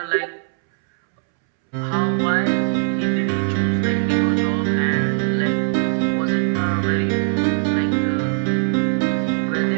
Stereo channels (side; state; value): left; silent; 66 dB below the other